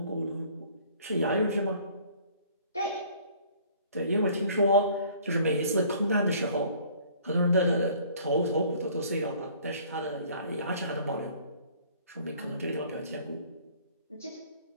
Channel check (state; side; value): inverted; both; correlation -0.54